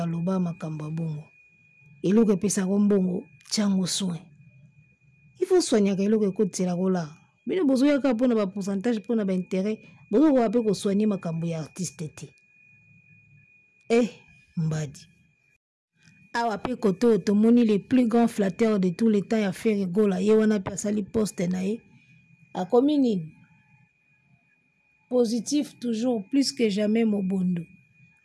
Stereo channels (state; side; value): identical; both; correlation 1.00